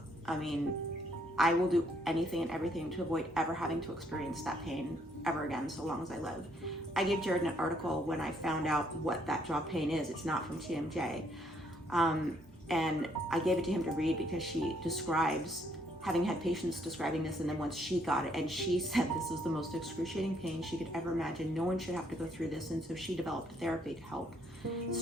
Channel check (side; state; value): both; normal; correlation 0.69